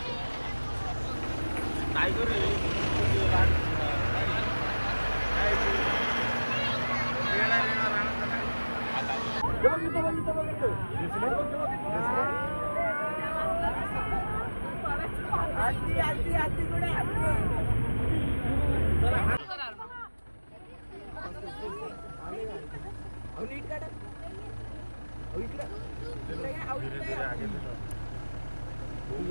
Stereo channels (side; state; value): both; inverted; correlation -1.00